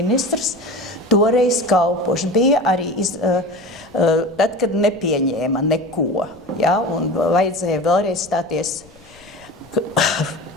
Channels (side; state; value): left; noise; rumble, 26 dB below the sound